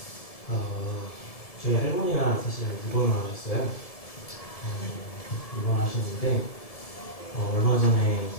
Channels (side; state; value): right; late; 1.7 ms